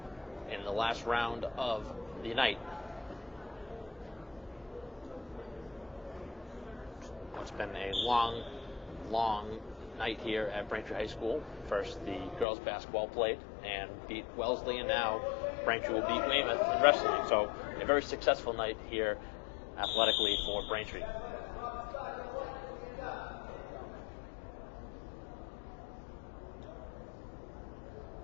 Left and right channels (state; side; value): drops out; right; at 12.5 s